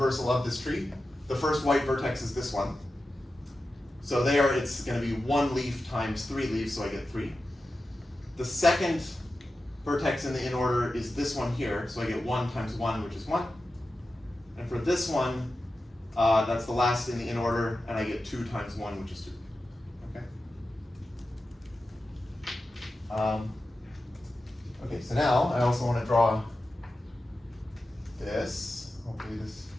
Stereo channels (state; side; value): normal; both; correlation 0.93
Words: of this tree, the first white vertex is this one. So there it's going to be 1 leaf times 3 leaves, so I get 3. The second vertex in the in-order is this one here, so I get 1 times 1, which is 1. And for this one, that's the last in the in-order, and I get 2 times 1, which is 2. Okay. Okay, so now I also want to draw this. Hopefully this